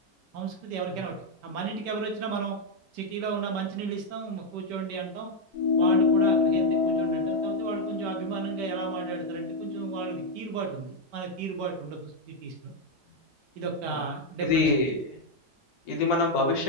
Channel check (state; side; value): normal; both; correlation 0.00